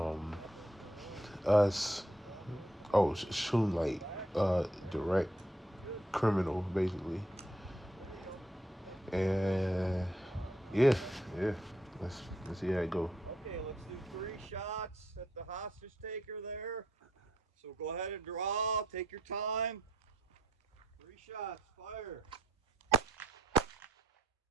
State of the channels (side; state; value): both; normal; correlation 0.73